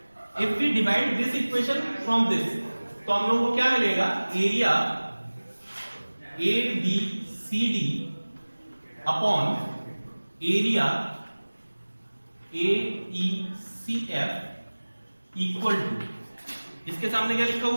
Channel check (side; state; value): both; inverted; correlation -1.00